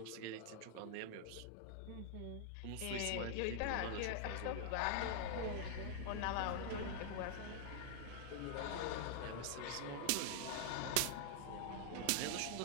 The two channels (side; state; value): both; different; correlation 0.00